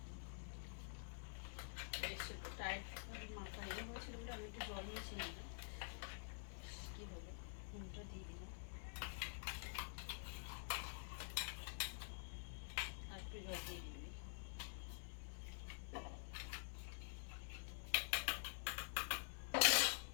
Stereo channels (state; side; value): silent; right; digital silence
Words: টাইট মাথা ইয়ে হয়েছিল বলে আমি একটু জল মিশিয়ে নিই। কী হলো, নুনটা দিয়ে দিলাম, আর একটু জল দিয়ে দিই।